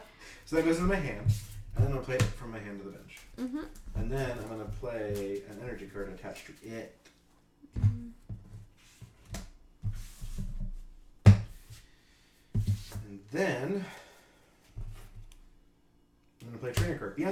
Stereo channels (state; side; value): identical; both; correlation 1.00